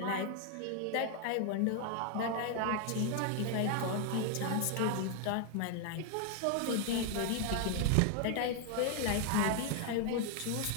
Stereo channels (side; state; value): both; different; correlation 0.00